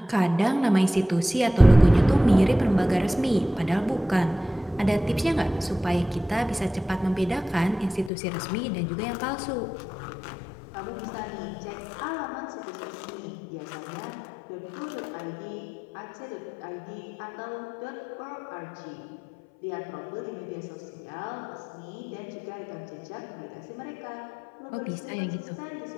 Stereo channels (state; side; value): drops out; right; at 8.1 s